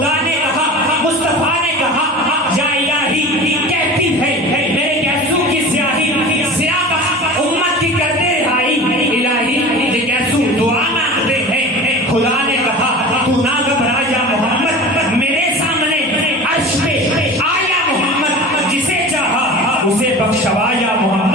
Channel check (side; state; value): both; normal; correlation 0.35